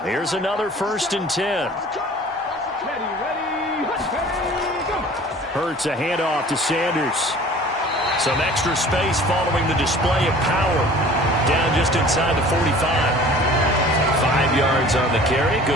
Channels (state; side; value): normal; both; correlation 0.46